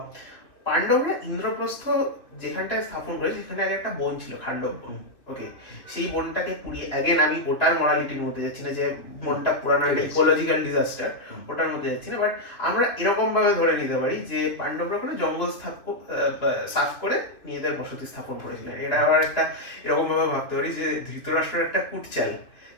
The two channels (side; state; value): right; late; 2.7 ms